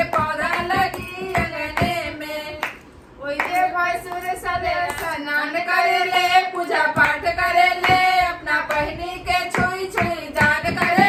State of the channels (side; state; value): both; identical; correlation 1.00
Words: पौधा लगी, अंगने में ओइजे भैंसुर सले स्नान करे ले, पूजा पाठ करे ले, अपना बहिनी के छुई छुई दान करे